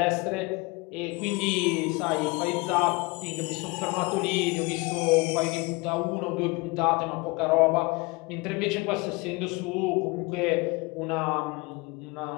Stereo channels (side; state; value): right; quieter; 25.9 dB